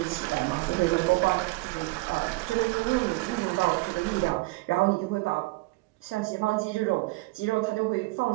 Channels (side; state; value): left; quieter; 23.2 dB